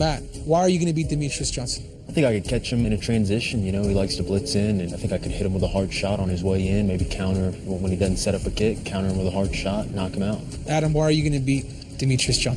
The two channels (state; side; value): identical; both; correlation 1.00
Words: why are you going to beat Demetrius Johnson? I think I could catch him in a transition. You know, he likes to blitz in, and I think I could hit him with a hard shot on his way in, maybe counter when he doesn't set up a kick, counter him with a hard shot, knock him out. Adam, why are you going to beat Demetrius